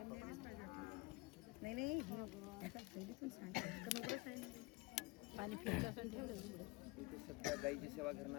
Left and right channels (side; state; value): right; quieter; 23.5 dB